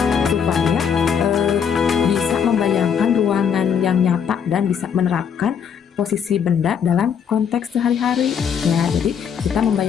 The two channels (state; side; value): quieter; right; 7.4 dB